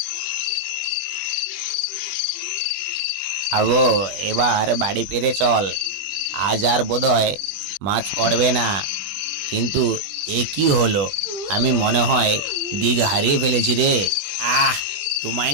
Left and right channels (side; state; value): left; late; 20 ms